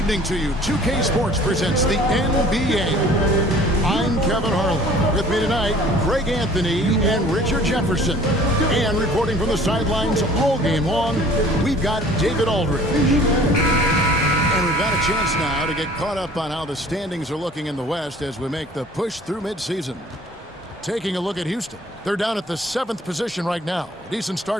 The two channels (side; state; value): both; normal; correlation 0.50